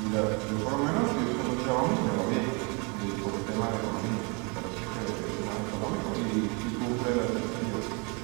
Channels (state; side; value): quieter; left; 32.0 dB